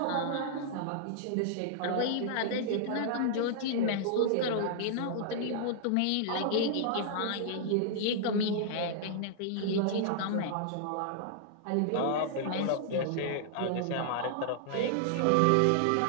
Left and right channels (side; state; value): both; different; correlation -0.01